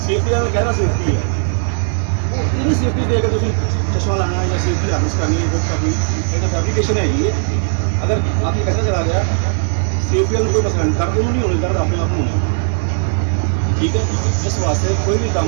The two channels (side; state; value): left; silent; digital silence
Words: सेफ्टी का कहना सेफ्टी है, इन्हीं सेफ्टी देकर तुम चश्मा लाना या सेफ्टी हार्नेस करनी है, वो कभी एक फैब्रिकेशन है ये। अगर आपकी कैसा चला गया सेफ्टी का कोई मसला नहीं, दर्द नहीं होने, दर्द अपने आप होने, ठीक है। इस वास्ते कोई भी काम